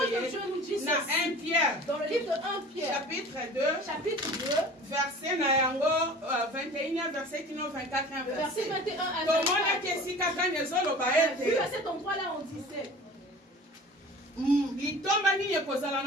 Dieu nous dit ceci. Dans le livre de 1 Pierre, chapitre 2, verset 21, verset 24, verset 21 à 24. À cet endroit-là, on disait, quelle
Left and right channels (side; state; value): both; normal; correlation 0.41